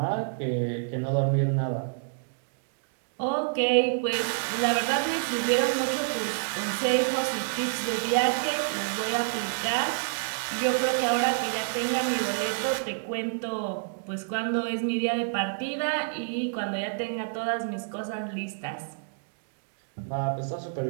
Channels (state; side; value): silent; left; digital silence